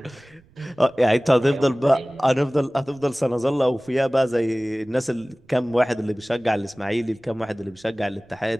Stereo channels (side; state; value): right; noise; rumble, 30 dB below the sound